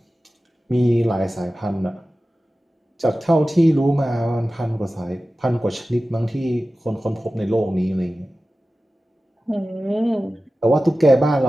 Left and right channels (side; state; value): both; normal; correlation 0.95